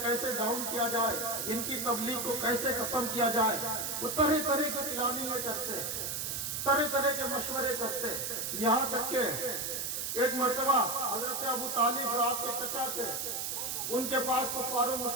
کیسے ڈاؤن کیا جائے، ان کی تبلیغ کو کیسے ختم کیا جائے۔ وہ طرح طرح کی پلاننگیں کرتے، طرح طرح کے مشورے کرتے، یہاں تک کہ ایک مرتبہ حضرت ابو طالب جو آپ کے چچا تھے، ان کے پاس کفار و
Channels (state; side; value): noise; right; hiss, 2 dB below the sound